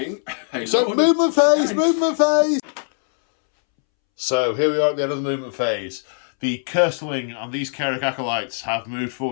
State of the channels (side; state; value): right; silent; 65 dB below the other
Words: Movement phase. So here we are at the end of the movement phase. The Curseling and these Carrick Acolytes have moved